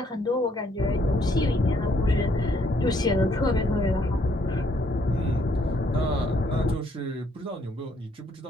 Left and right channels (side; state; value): both; normal; correlation 0.68